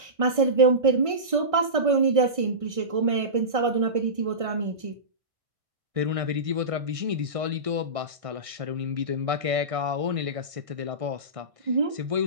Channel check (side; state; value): left; late; 1.6 ms